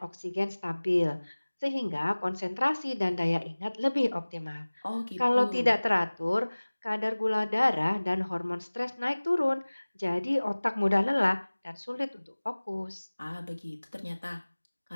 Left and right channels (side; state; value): both; inverted; correlation -1.00